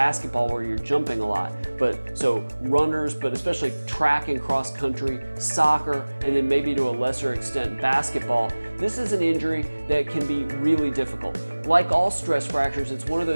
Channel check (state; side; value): inverted; both; correlation -1.00